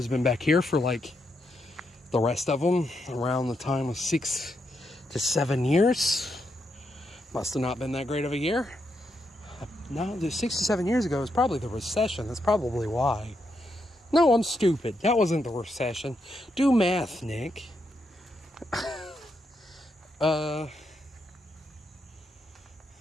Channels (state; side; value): normal; both; correlation 0.81